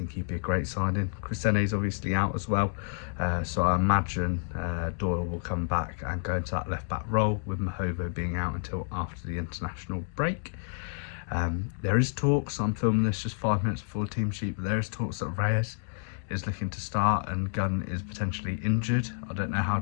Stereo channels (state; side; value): silent; right; digital silence